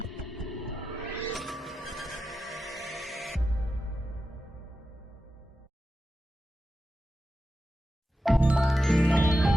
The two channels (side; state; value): both; normal; correlation 0.90